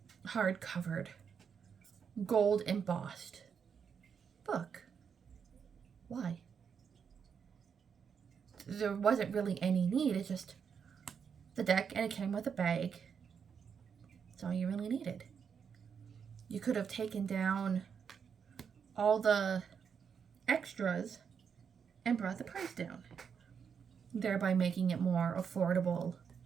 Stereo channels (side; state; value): left; quieter; 6.8 dB